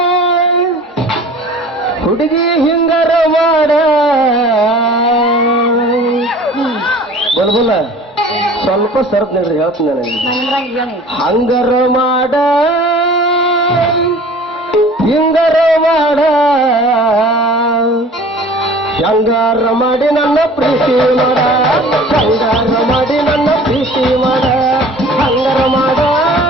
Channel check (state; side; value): normal; both; correlation 0.45